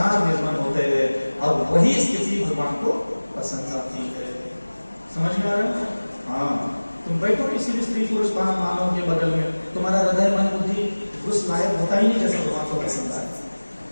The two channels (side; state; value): both; inverted; correlation -1.00